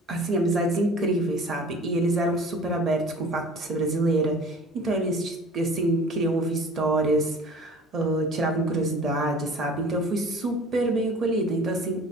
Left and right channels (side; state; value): both; normal; correlation 0.45